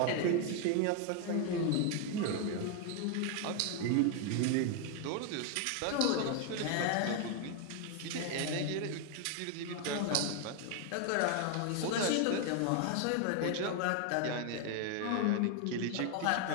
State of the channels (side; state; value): both; different; correlation 0.01